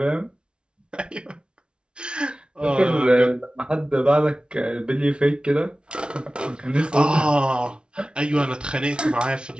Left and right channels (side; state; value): left; late; 0.056 ms